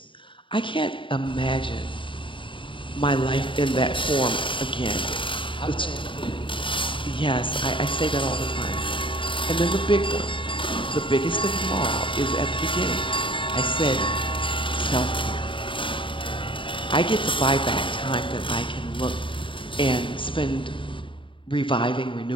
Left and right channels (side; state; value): right; late; 0.25 ms